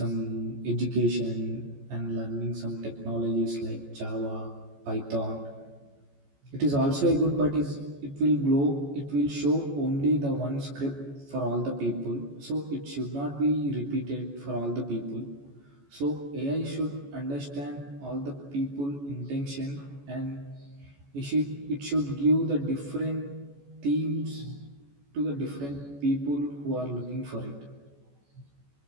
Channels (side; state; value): left; late; 14 ms